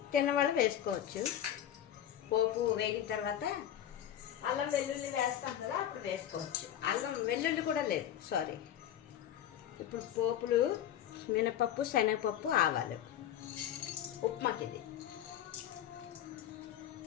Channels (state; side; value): quieter; right; 10.8 dB